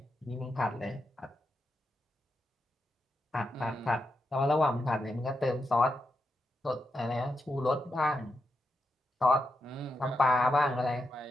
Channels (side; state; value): both; normal; correlation 0.85